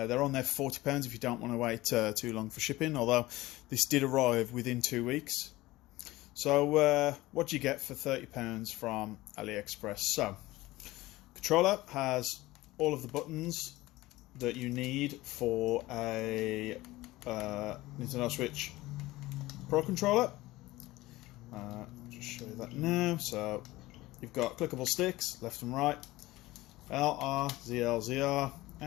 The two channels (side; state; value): right; quieter; 18.5 dB